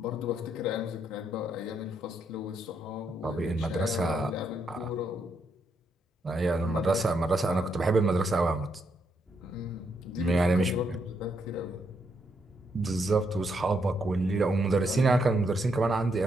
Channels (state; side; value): normal; both; correlation 0.78